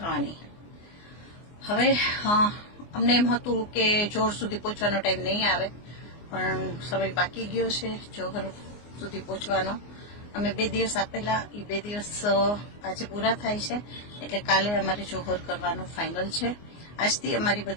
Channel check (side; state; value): right; late; 24 ms